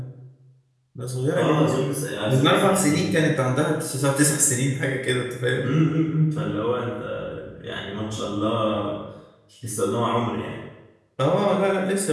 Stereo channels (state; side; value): identical; both; correlation 1.00